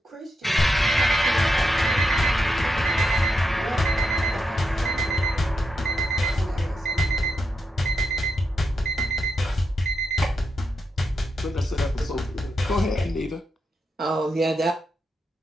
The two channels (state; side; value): normal; both; correlation 0.85